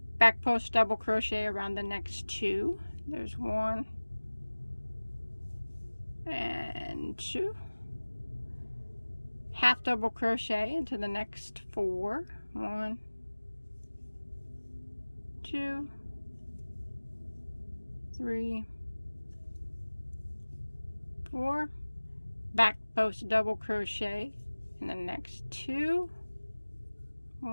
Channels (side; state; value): both; inverted; correlation -1.00